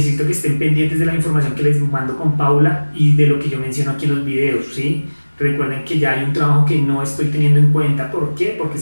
que estén pendientes de la información que les mando con Paula y de lo que yo menciono aquí en los videos, ¿sí? Recuerden que ya hay un trabajo que no estoy teniendo en cuenta. ¿Por qué? Porque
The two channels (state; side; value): inverted; both; correlation -1.00